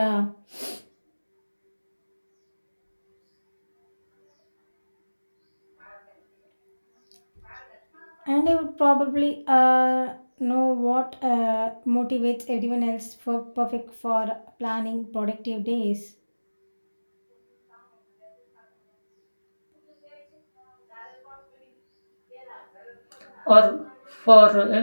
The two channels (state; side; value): inverted; both; correlation -1.00